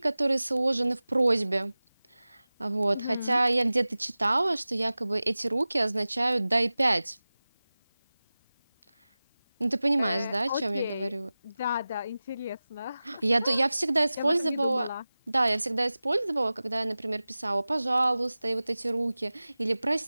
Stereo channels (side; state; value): both; inverted; correlation -0.97